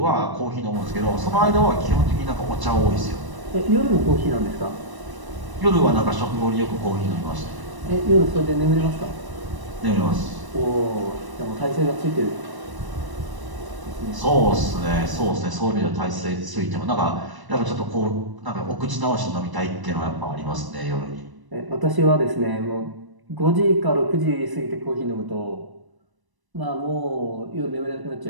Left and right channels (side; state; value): left; late; 1.0 ms